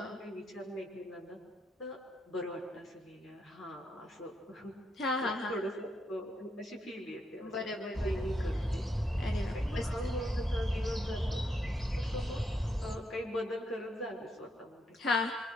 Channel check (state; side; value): normal; both; correlation 0.79